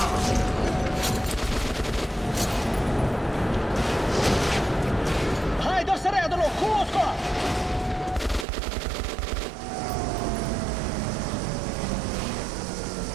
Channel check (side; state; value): left; drops out; at 8.5 s